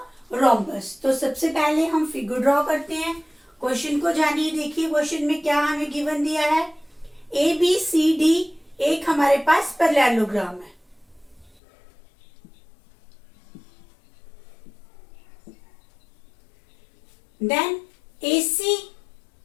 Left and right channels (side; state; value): right; drops out; at 11.6 s